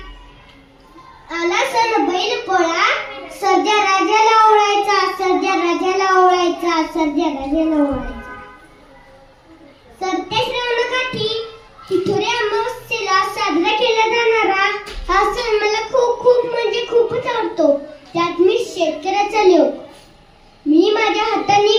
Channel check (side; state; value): both; identical; correlation 1.00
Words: आला सण बैल पोळा, सर्जा राजाला ओळायचा, सर्जा राजाला ओळायचा, सर्जा राजाला ओळायचा. सरते श्रावणकाठी तिथुरे अमावस्येला साजरा केला जाणारा हा सण मला खूप म्हणजे खूपच आवडतो. त्यात मी शेतकऱ्याचा लोक. मी माझ्या हाताने